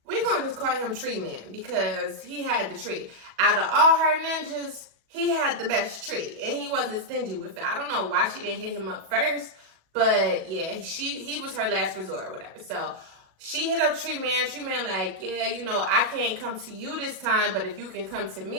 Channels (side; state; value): left; late; 37 ms